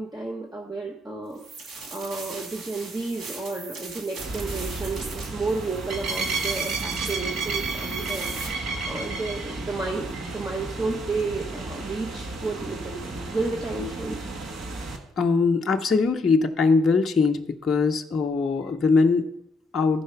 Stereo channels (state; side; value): normal; both; correlation 0.72